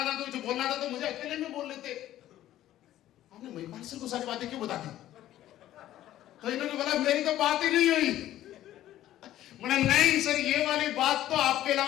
था, तो कुछ बोलना था तो मुझे अकेले में बोल लेते, आपने महिपाल सर को सारी बातें क्यों बता दी? तो इन्होंने बोला मेरी तो बात ही नहीं हुई। बोले नहीं सर, ये वाली बात तो आपके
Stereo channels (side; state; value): right; quieter; 13.3 dB